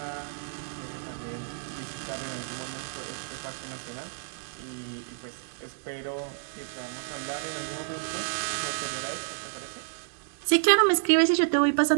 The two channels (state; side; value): silent; left; digital silence